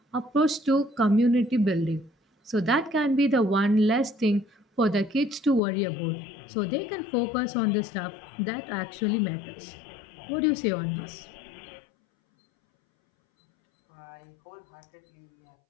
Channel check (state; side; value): drops out; right; at 5.6 s